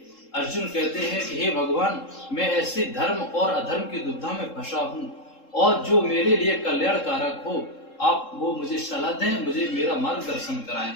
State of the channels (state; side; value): late; right; 3.7 ms